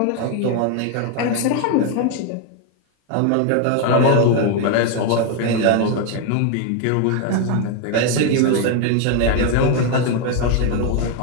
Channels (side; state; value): both; different; correlation 0.01